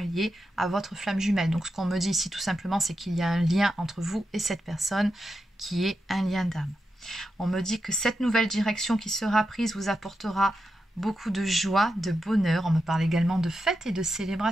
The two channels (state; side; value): normal; both; correlation 0.88